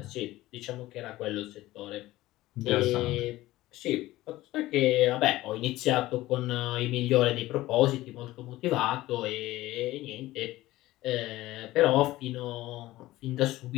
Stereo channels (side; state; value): right; quieter; 16.9 dB